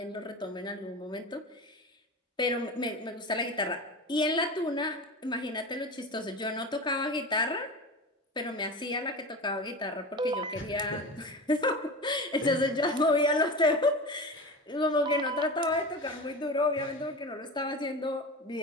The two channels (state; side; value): normal; both; correlation 0.29